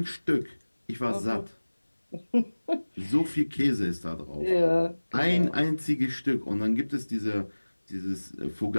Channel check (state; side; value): inverted; both; correlation -1.00